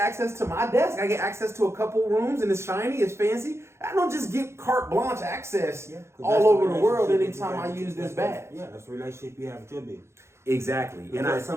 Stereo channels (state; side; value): late; left; 0.13 ms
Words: to my desk. I get access to a couple rooms and it's shiny, it's fancy. I don't just get carte blanche access all over the world anytime I use this badge. Yeah, that's the relationship you have with your business. Exactly. Because